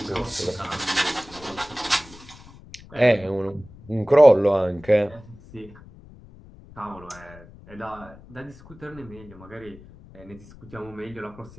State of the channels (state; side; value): noise; left; rumble, 20 dB below the sound